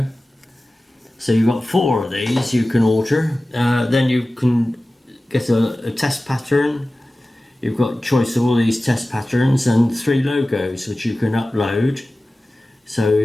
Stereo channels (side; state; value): both; normal; correlation 0.96